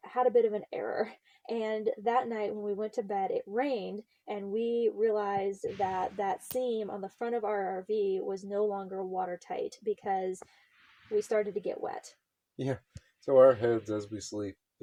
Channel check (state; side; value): identical; both; correlation 1.00